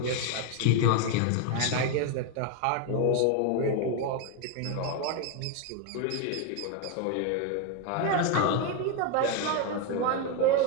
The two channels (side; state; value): both; different; correlation 0.01